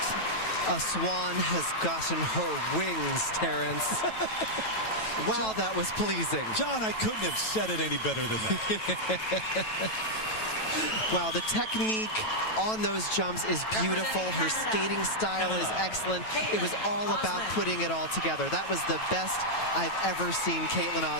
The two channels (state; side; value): late; right; 9.2 ms